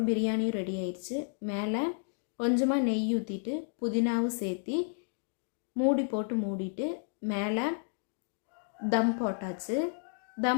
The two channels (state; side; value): silent; right; digital silence